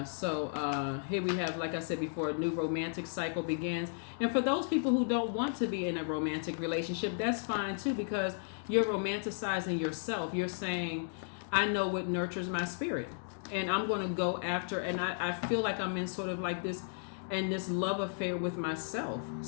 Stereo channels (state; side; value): silent; right; digital silence